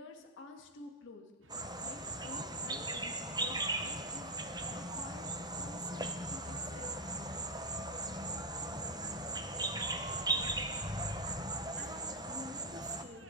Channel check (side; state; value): both; normal; correlation 0.02